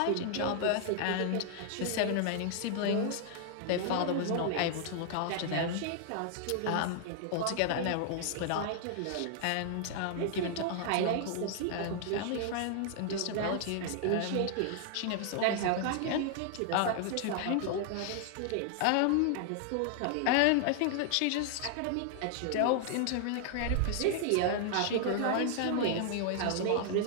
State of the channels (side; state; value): both; different; correlation 0.00